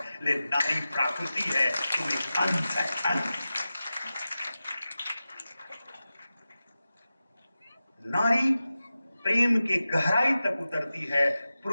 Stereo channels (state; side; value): inverted; both; correlation -0.94